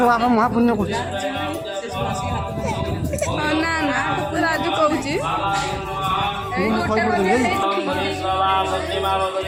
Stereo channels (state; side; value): identical; both; correlation 1.00